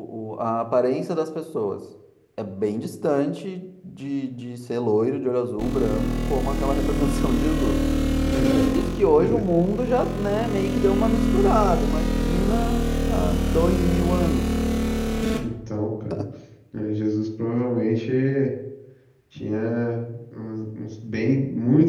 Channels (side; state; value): both; identical; correlation 1.00